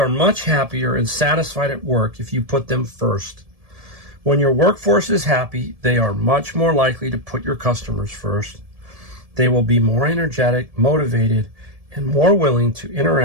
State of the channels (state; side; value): late; left; 1.7 ms